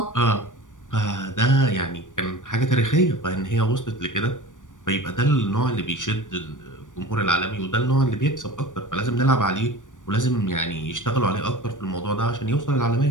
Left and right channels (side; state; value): right; late; 0.87 ms